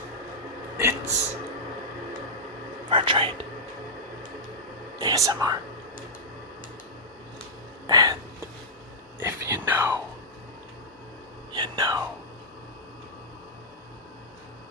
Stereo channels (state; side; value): normal; both; correlation -0.08